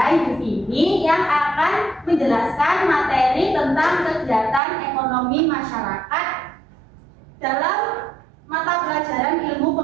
Ibu Vini yang akan menjelaskan materi tentang kegiatan ekonomi masyarakat dalam mata pelajaran ilmu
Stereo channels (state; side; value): drops out; left; at 4.6 s